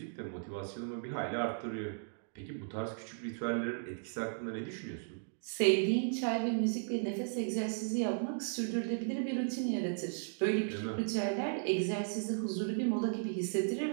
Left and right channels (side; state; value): left; silent; digital silence